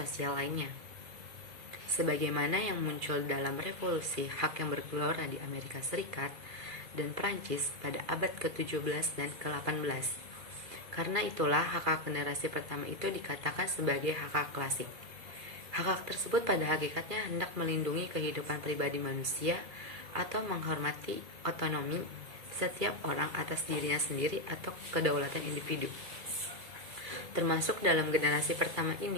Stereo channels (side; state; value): left; late; 2.3 ms